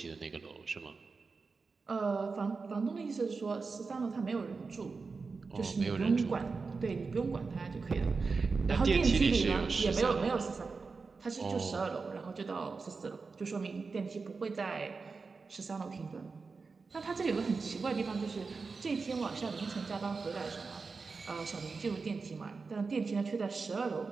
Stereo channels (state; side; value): quieter; left; 4.5 dB